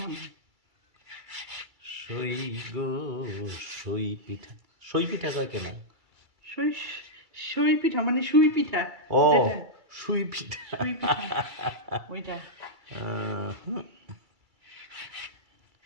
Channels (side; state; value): left; late; 2.3 ms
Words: সই গো, সই পিঠা। সই পিঠা কয় কেন? সই সই পিঠা মানে সুই পিঠা। ও, যেটা সুই পিঠা। সুই পিঠা ওইটা।